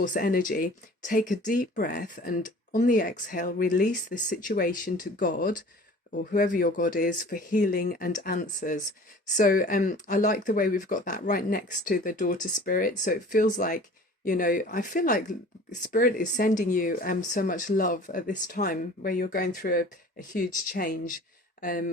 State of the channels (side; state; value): both; normal; correlation 0.45